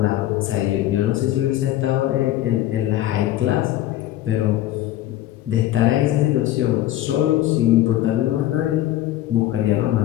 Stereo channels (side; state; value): right; quieter; 14.0 dB